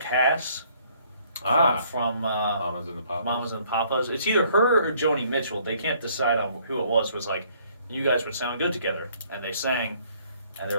from Mamas and the Papas. Mamas and the Papas. It's either her or Joni Mitchell. They can't decide on who it was like, you guys would sound good together. And they sang, and they're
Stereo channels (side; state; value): both; inverted; correlation -0.62